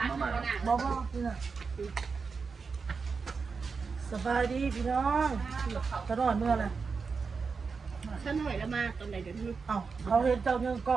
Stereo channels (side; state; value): left; quieter; 5.0 dB